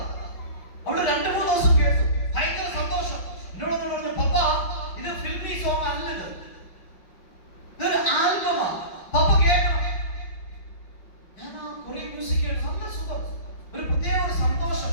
അവള് 2-3 ദിവസം കേട്ടു, ഭയങ്കര സന്തോഷം. എന്നോട് പറഞ്ഞു, പപ്പ ഇത് ഫിൽമി സോങ് അല്ലത്, ഇതൊരു ആൽബമാ, പപ്പ കേൾക്കണം. ഞാൻ ആ കൊറിയൻ മ്യൂസിക് കേട്ടു, നല്ല സുഖം, ഒരു പ്രത്യേക ഒരു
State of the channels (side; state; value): right; late; 5.6 ms